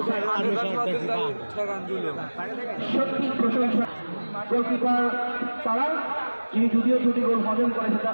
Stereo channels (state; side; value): inverted; both; correlation -1.00